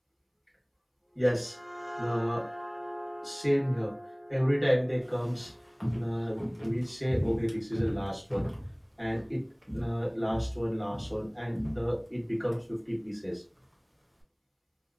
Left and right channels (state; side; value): identical; both; correlation 1.00